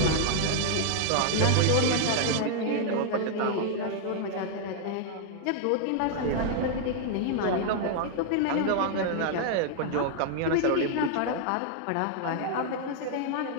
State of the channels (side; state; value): both; different; correlation 0.00